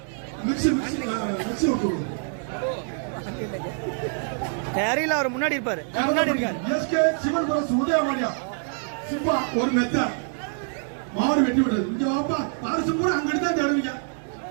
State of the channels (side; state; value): left; silent; 59 dB below the other